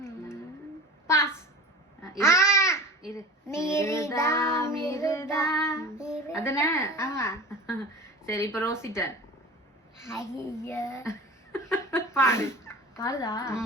பாஸ். இரு. மிருதா மிருதா அதானே? ஆமா. சரி இப்ப ரோசிட்டன். ஐயா பாடு. பாருடா.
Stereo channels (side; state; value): both; normal; correlation 0.36